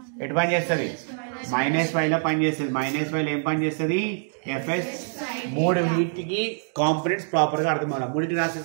ఎటు పని చేస్తుంది? మైనస్ వైలో పని చేస్తుంది. మైనస్ వైలో ఏం పని చేస్తుంది? ఎఫ్ఎస్. మూడు వీటికి కాంపోనెంట్స్ ప్రాపర్గా అర్థం అవ్వాలి. మూడింటికి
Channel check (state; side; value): silent; left; digital silence